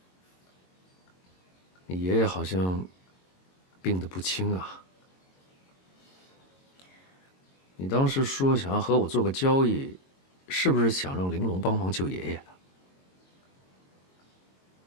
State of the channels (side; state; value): right; late; 22 ms